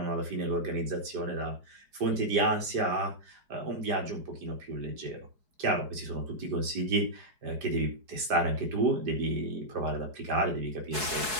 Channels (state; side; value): late; left; 4.7 ms